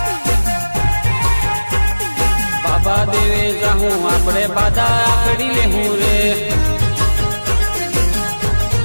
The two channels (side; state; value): both; inverted; correlation -1.00